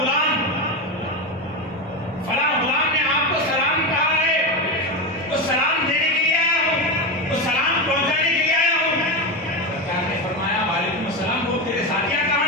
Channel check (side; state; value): both; normal; correlation 0.16